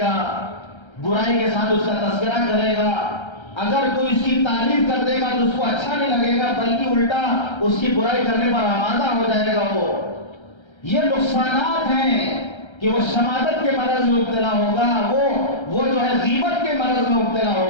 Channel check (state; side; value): late; right; 1.3 ms